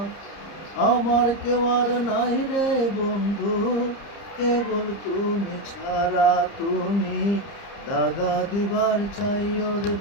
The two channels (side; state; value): right; late; 30 ms